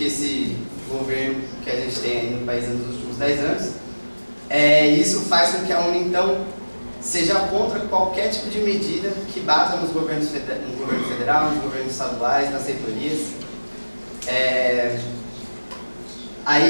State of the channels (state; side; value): inverted; both; correlation -1.00